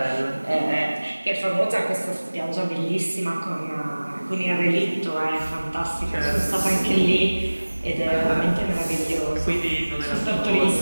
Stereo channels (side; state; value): both; inverted; correlation -1.00